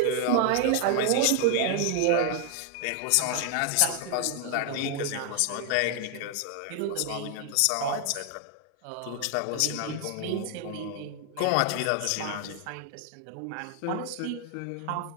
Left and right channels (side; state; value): both; different; correlation 0.00